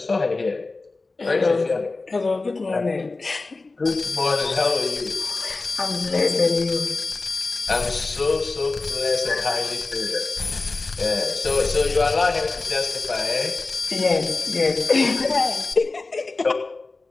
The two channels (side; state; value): right; quieter; 3.5 dB